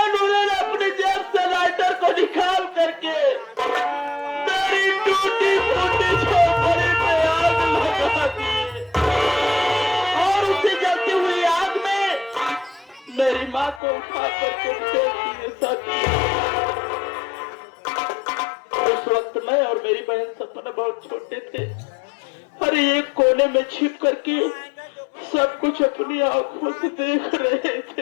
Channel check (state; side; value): drops out; right; at 13.8 s